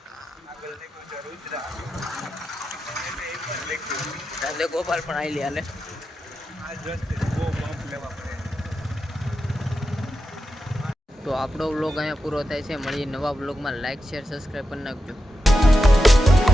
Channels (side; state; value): both; normal; correlation 0.89